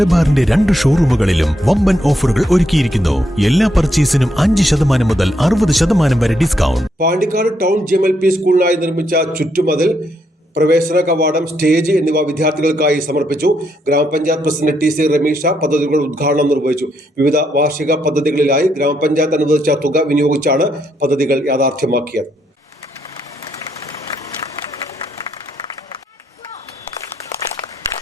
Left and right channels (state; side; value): normal; both; correlation 0.77